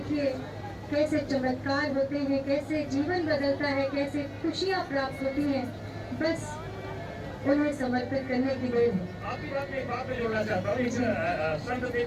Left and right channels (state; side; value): identical; both; correlation 1.00